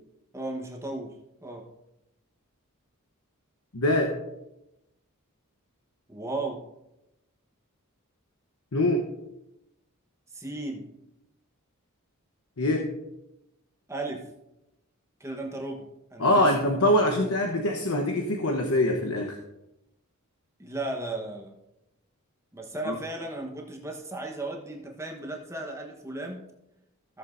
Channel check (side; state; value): both; normal; correlation 0.04